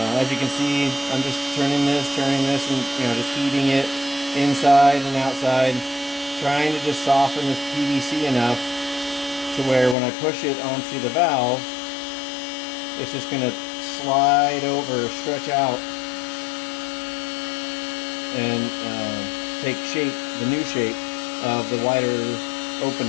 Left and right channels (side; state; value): right; drops out; at 10.0 s